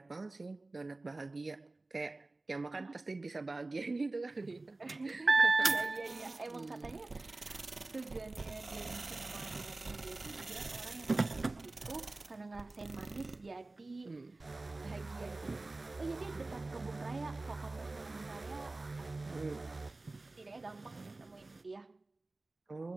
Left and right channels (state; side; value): quieter; left; 3.1 dB